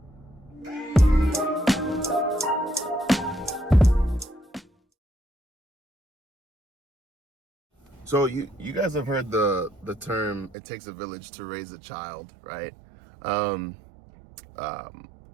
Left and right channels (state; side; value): drops out; left; at 10.6 s